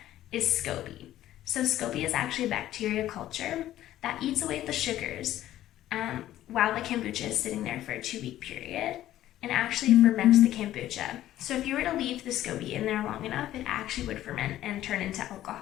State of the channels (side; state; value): right; quieter; 13.4 dB